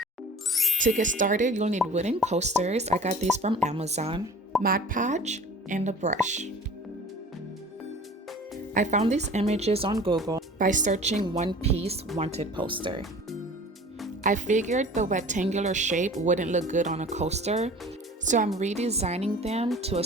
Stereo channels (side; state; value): both; normal; correlation 0.44